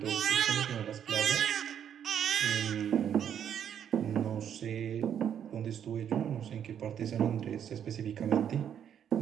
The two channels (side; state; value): left; quieter; 9.0 dB